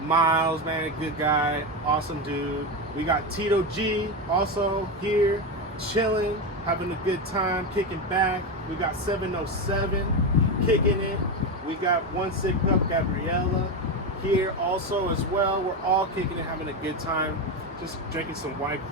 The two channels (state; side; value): normal; both; correlation 0.14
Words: Miles, man, good guy, awesome dude. We got Tito Gee also here, chilling, having a good time, kicking back. We got 707 kicking it. We got One Sick Up Gabriela here also as well. We're all kicking it, having a good time, just drinking some White